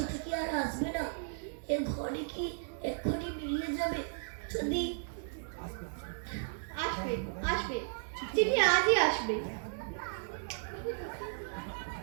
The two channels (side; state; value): left; silent; 54 dB below the other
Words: কি আর আসবে না? এ ঘরে কি এক্ষুনি মিলিয়ে যাবে? যদি আসবে, আসবে, চিঠি আজই আসবে।